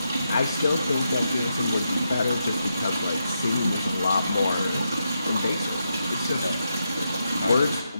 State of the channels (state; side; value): inverted; both; correlation -0.84